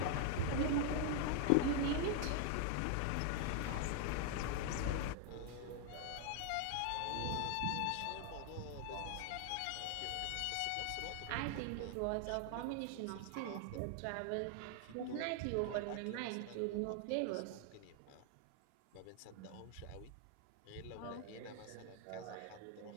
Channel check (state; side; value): different; both; correlation 0.00